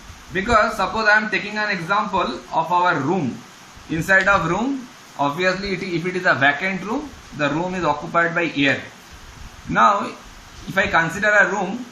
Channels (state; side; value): identical; both; correlation 1.00